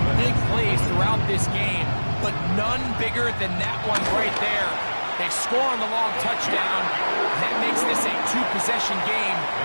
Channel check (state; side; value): inverted; both; correlation -1.00